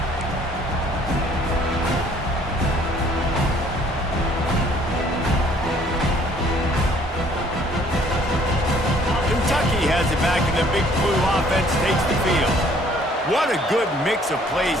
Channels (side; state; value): both; normal; correlation 0.59